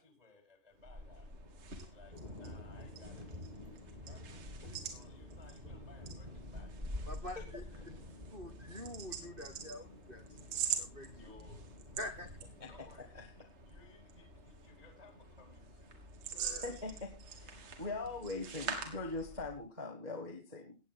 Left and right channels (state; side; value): late; left; 3.2 ms